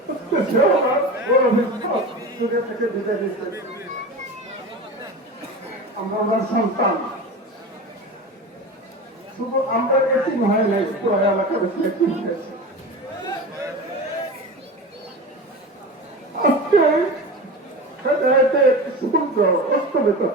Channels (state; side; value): normal; both; correlation 0.29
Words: আমরা সন্তান, শুধু আমরা এটি হয় নাই, এলাকার আজকে সূর্য অস্তমিত